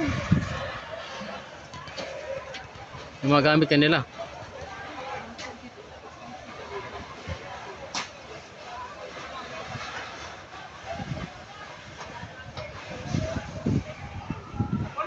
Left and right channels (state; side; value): identical; both; correlation 1.00